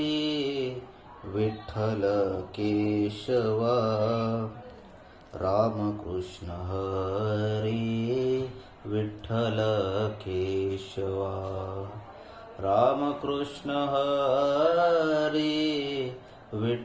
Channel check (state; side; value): identical; both; correlation 1.00